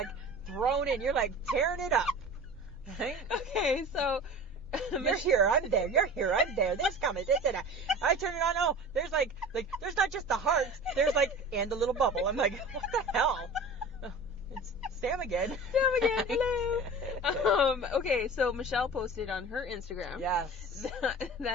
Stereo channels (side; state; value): both; normal; correlation 0.37